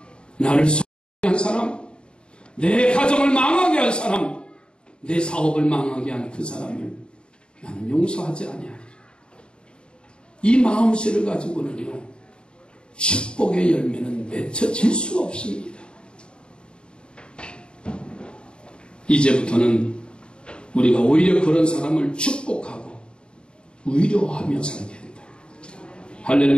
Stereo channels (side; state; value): right; late; 0.052 ms